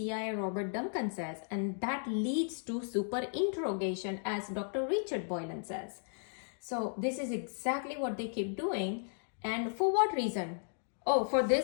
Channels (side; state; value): right; silent; digital silence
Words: Robert Duncan says, and that leads to superinterrogation, as Dr. Richard Boylan says. So this is exactly what they keep doing. And for what reason? Oh, for